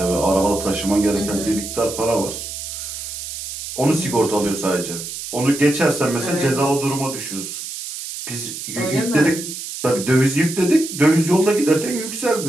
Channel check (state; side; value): noise; right; hiss, 8 dB below the sound